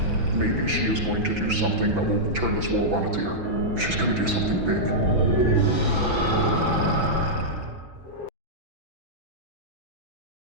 Maybe she is going to do something that will turn this world on its ear. She's going to do something big.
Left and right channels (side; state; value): left; late; 6.0 ms